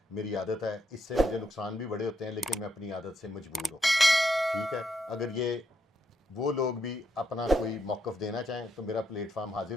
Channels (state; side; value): normal; both; correlation 0.78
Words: मेरी आदत है। इससे मुझे नुकसान भी बड़े होते हैं, लेकिन मैं अपनी आदत से मजबूर हूँ। ठीक है, अगर ये वो लोग भी अपना कोई मौक़िफ़ देना चाहें तो मेरा प्लेटफार्म